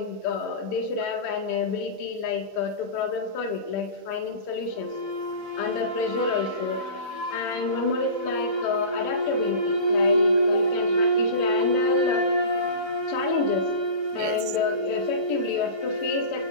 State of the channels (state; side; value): late; right; 4.1 ms